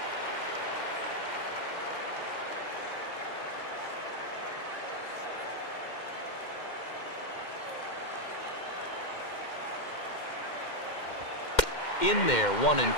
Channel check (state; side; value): late; right; 2.1 ms